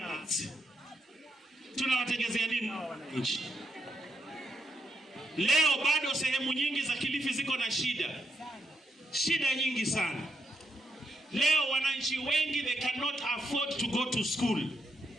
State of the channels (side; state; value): both; normal; correlation 0.80